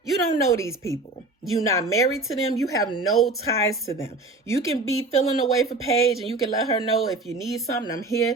You don't know these people. You're not married to them. You have no ties to them. You can be feeling away for Paige and you can let her know if you need something, I'm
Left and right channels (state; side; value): quieter; left; 3.1 dB